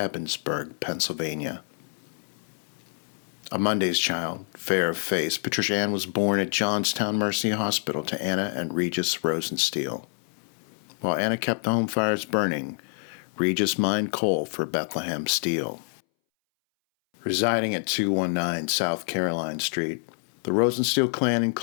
Pennsylvania. A Monday's child, fair of face, Patricia Ann was born at Johnstown Mercy Hospital to Anna and Regis Rosensteel. While Anna kept the home fires burning, Regis mined coal for Bethlehem Steel. Residing at 219 South Caroline Street, the Rosensteel clan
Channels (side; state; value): right; silent; 60 dB below the other